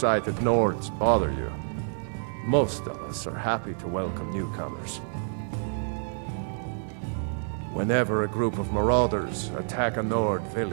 Nords bother you. Most of us are happy to welcome newcomers. Whenever a group of marauders attack a Nord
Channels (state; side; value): silent; left; digital silence